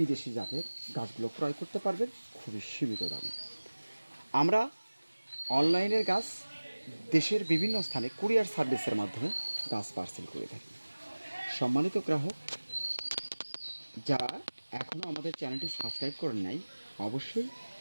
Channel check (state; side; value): inverted; both; correlation -1.00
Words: জাতের গাছগুলো ক্রয় করতে পারবেন খুবই সীমিত দামে। আমরা অনলাইনের গাছ দেশের বিভিন্ন স্থানে কুরিয়ার সার্ভিসের মাধ্যমে গাছ পার্সেল করে থাকি। সম্মানিত গ্রাহক, যারা এখনও আমাদের চ্যানেলটি সাবস্ক্রাইব করেন নাই, অবশ্যই